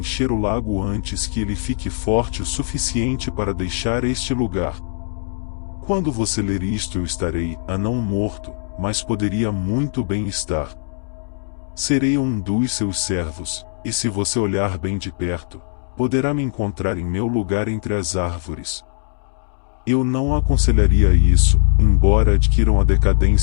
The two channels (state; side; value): silent; right; digital silence